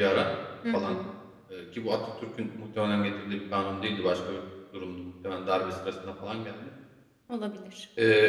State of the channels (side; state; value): both; identical; correlation 1.00